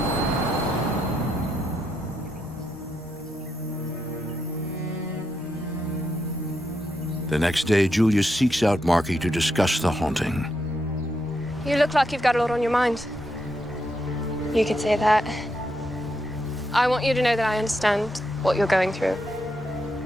The next day, Julia seeks out Marky to discuss the haunting. You look like you've got a lot on your mind. You could say that. I want you to know that I understand what you're going through.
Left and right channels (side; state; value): both; normal; correlation 0.82